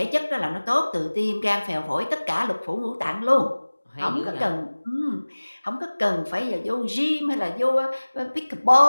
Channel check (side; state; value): both; inverted; correlation -1.00